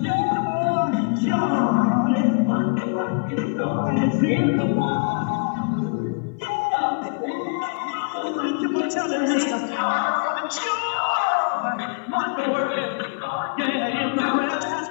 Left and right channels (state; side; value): quieter; right; 34.1 dB